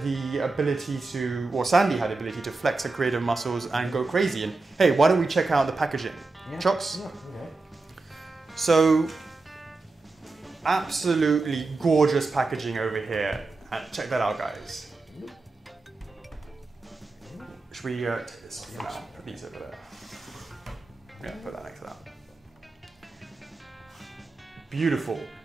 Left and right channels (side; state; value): left; quieter; 3.6 dB